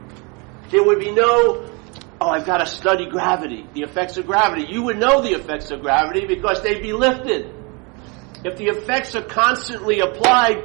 There would be no, oh, I've got to study gravity, the effects of gravity. You would know the effects of gravity because they'd be lifted. If the effects are constantly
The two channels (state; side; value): quieter; left; 31.1 dB